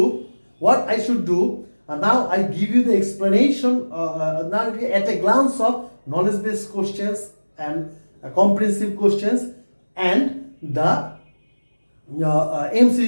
now I give you the explanation now at a glance of knowledge-based questions and comprehensive questions and the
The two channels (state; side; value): inverted; both; correlation -1.00